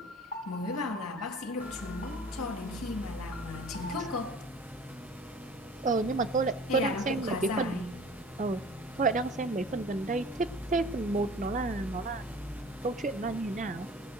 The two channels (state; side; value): normal; both; correlation 0.45